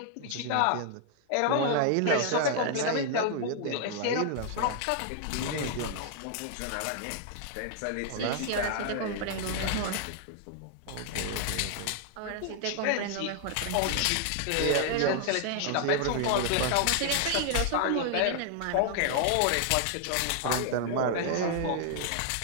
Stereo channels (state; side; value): different; both; correlation 0.00